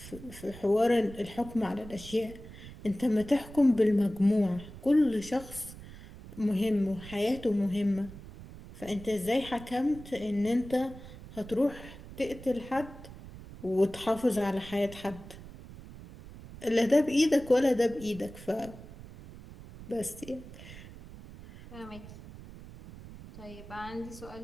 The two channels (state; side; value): noise; right; rumble, 16 dB below the sound